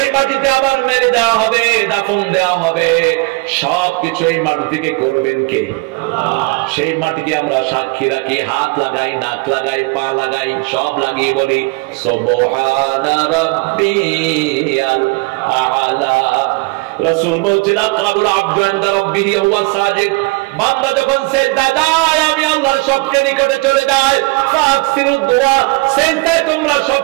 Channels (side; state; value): left; quieter; 26.2 dB